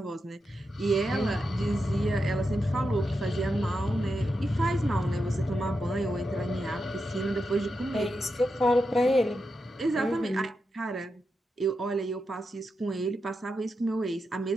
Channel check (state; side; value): normal; both; correlation 0.87